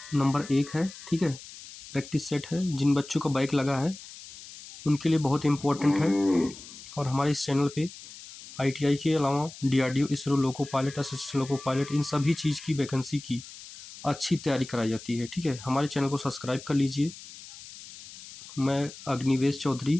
नंबर 1 है, ठीक है। प्रैक्टिस सेट है। जिन बच्चों का बाइक लगा है उनके लिए बहुत इम्पोर्टेंट है। और हमारे इस चैनल पे आईटीआई के अलावा DRDO, ISRO, loco pilot, assistant loco pilot, इन सभी चीज़ की वैकेंसी की अच्छी तैयारी कराई जाती है, ठीक है। हमारे चैनल को सब्सक्राइब कर लीजिए। मैं अग्निवेश चौधरी,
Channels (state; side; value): noise; left; hiss, 16 dB below the sound